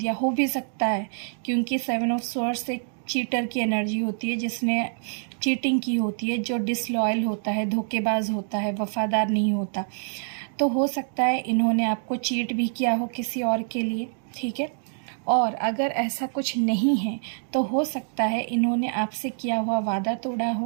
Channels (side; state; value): left; silent; digital silence